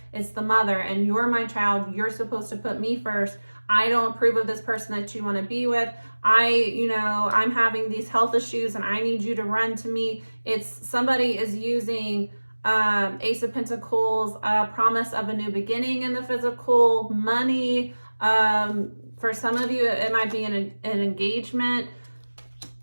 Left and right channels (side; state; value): both; inverted; correlation -1.00